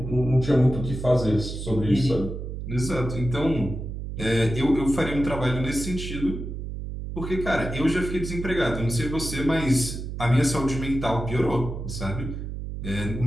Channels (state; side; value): noise; right; hum, 7 dB below the sound